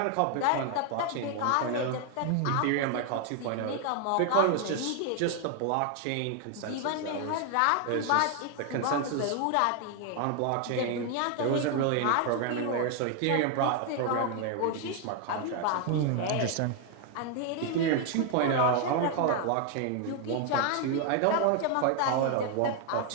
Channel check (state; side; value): different; both; correlation 0.00